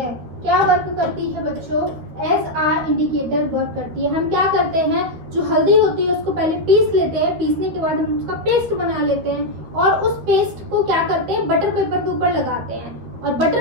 क्या वर्क करती है बच्चों, एज आ इंडिकेटर वर्क करती है। हम क्या करते हैं, जो हल्दी होती है उसको पहले पीस लेते हैं, पीसने के बाद हम उसका पेस्ट बना लेते हैं और उस पेस्ट को क्या करते हैं, बटर पेपर के ऊपर लगाते हैं और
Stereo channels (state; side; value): late; left; 13 ms